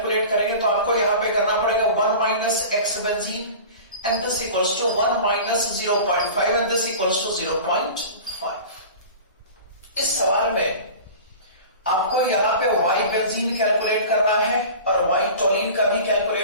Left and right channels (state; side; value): inverted; both; correlation -0.37